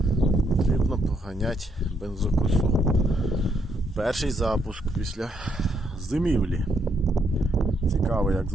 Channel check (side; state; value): both; normal; correlation 0.74